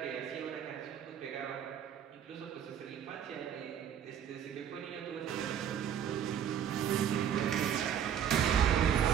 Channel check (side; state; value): left; quieter; 9.0 dB